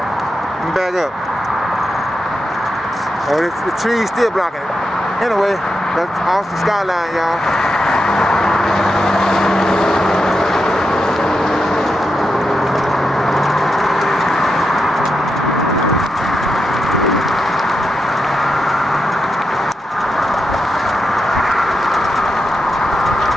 me back up. Oh, the trees still blocking it. Anyway. That's Austin skyline, y'all.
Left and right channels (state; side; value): normal; both; correlation 0.87